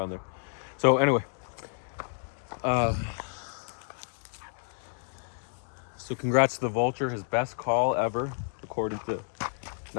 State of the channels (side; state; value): right; silent; digital silence